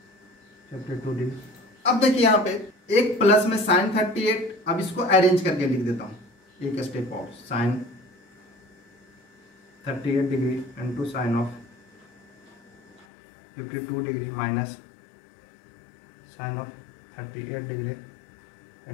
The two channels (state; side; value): drops out; right; at 13.1 s